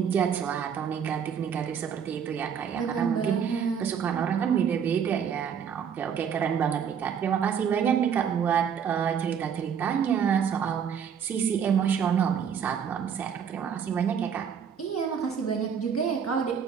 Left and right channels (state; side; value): quieter; left; 7.6 dB